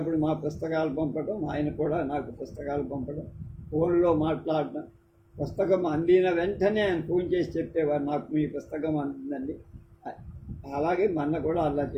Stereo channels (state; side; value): identical; both; correlation 1.00